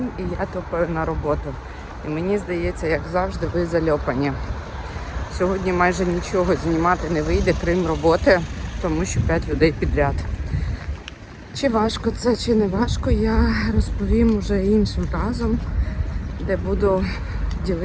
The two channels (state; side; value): identical; both; correlation 1.00